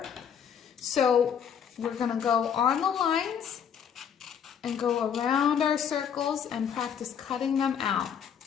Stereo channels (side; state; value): right; quieter; 8.0 dB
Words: So we're going to go on the lines and go around our circles and practice cutting them out.